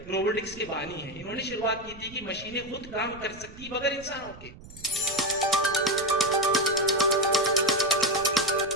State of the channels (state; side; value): noise; right; rumble, 18 dB below the sound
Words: روبوٹکس کے بانی ہیں، انہوں نے شروعات کی تھی کہ مشینیں خود کام کر سکتی بغیر انسانوں کے۔